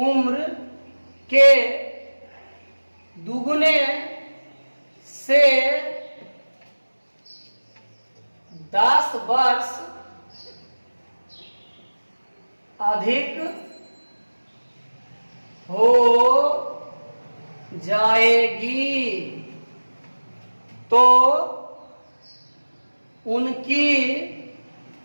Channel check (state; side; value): inverted; both; correlation -1.00